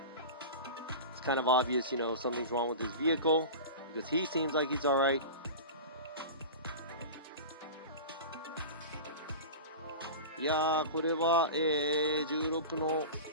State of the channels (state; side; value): inverted; both; correlation -0.31